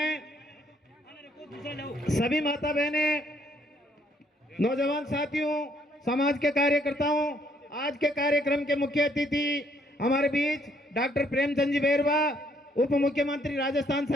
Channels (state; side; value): normal; both; correlation 0.67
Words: सभी माता बहनें, नौजवान साथियों, समाज के कार्यकर्ताओं, आज के कार्यक्रम के मुख्य अतिथि हमारे बीच डॉक्टर प्रेमचंद जी बेरवा, उप मुख्यमंत्री राजस्थान